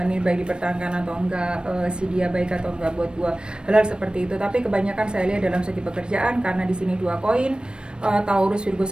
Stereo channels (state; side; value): late; left; 0.053 ms